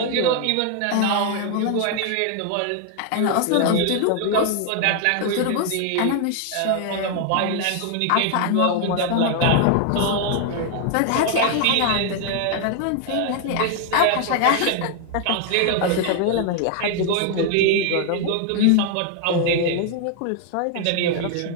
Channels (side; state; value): both; different; correlation 0.00